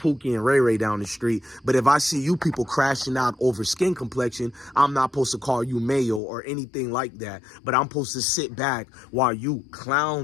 and Ray Ray down the street. But if I see you people crashing out over skin complexion, I'm not supposed to call you Mayo or anything like that. But I'm supposed to sit back while you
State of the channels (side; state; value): right; drops out; at 6.2 s